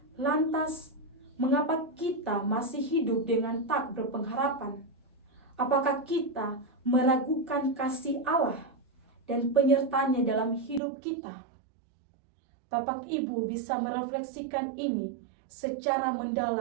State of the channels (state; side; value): drops out; left; at 10.8 s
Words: Lantas, mengapa kita masih hidup dengan tak berpengharapan? Apakah kita meragukan kasih Allah dan penyertanya dalam hidup kita? Bapak Ibu bisa merefleksikan ini secara